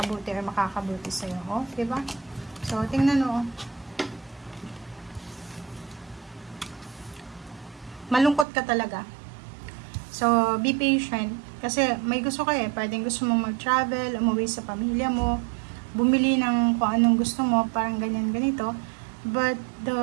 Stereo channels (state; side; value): drops out; left; at 8.5 s